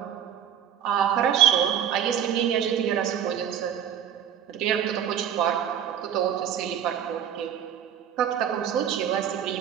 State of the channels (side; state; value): left; quieter; 9.3 dB